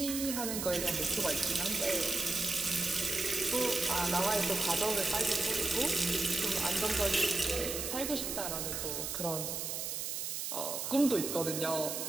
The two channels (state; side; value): noise; right; hiss, 3 dB below the sound